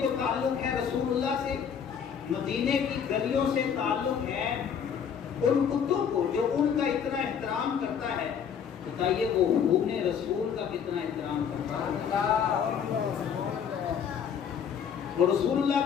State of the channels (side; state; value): right; quieter; 7.6 dB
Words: تعلق ہے رسول اللہ سے، مدینے کی گلیوں سے تعلق ہے، ان کتوں کو جو ان کا اتنا احترام کرتا ہے، بتائیے وہ خون رسول کا کتنا احترام کرتا ہے، وہ رسول